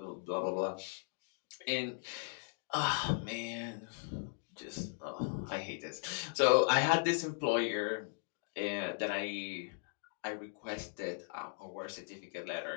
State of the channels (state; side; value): silent; right; 53 dB below the other